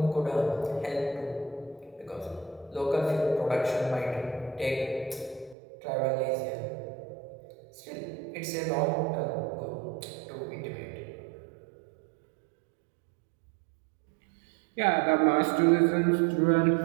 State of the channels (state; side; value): drops out; left; at 5.6 s